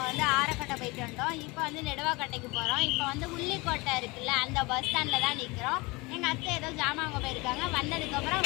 ஆரக்கட்டை போயிட்டு வந்தோம். இப்போ நெடுவாக்கட்டைக்கு போகிறோம். இப்போ உள்ளிக்கோட்டை இருக்குல்ல, அந்த பஸ் ஸ்டாண்டில் தான் நிற்கிறோம். எங்கள் அத்தை ஏதோ ஜாமான் அங்கே போயிருக்காங்க. வந்ததுக்கப்புறம்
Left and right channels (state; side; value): quieter; right; 24.7 dB